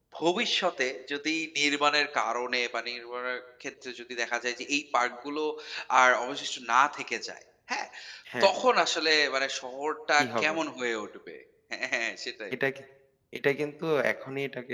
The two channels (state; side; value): identical; both; correlation 1.00